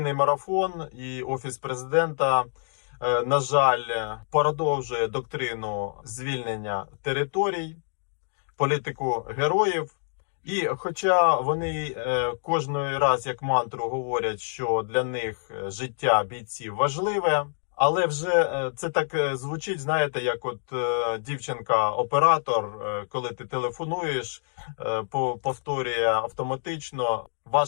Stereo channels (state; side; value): silent; right; digital silence